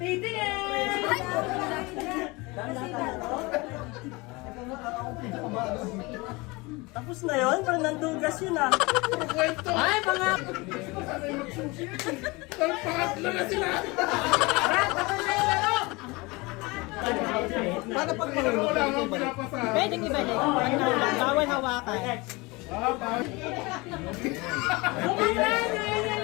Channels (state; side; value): quieter; right; 24.5 dB